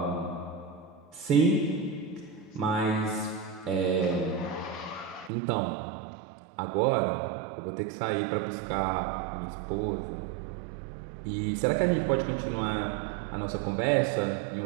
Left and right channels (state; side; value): drops out; left; at 5.3 s